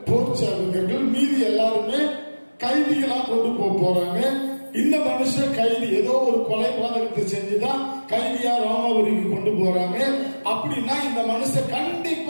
போர் சார்ந்தவர்கள், மீதி எல்லாருமே கைதிகளா கொண்டு போறாங்க. இந்த மனுஷன் கைதி, ஏதோ ஒரு கொலைபாதகத்தை செஞ்சுதான் கைதியா ரோமாபுரிக்கு கொண்டு போறாங்க. அப்படின்னா இந்த மனுஷன்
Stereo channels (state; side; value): inverted; both; correlation -1.00